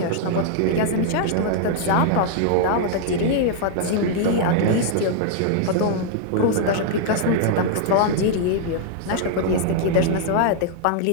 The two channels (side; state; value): both; different; correlation 0.00